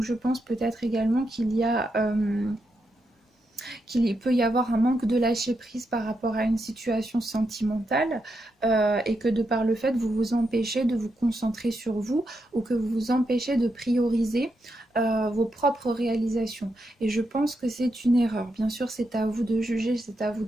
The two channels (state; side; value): normal; both; correlation 0.83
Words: je pense peut-être également qu'il peut y avoir un manque de lâcher prise par rapport à une situation sentimentale et que de par le fait vous vous empêchez de vous concentrer sur vous ou que vous vous empêchez de prioriser vos propres réalisations. Et je pense que c'est une erreur. Bien sûr, c'est à vous de juger, c'est à vous